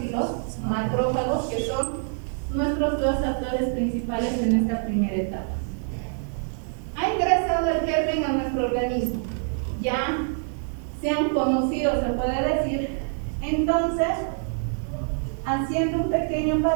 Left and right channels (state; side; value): silent; left; 61 dB below the other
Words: y los macrófagos, que son nuestros dos actores principales en esta primera etapa. Ha ingresado el germen a nuestro organismo, ya se han conocido, se puede decir. Entonces, haciendo un pequeño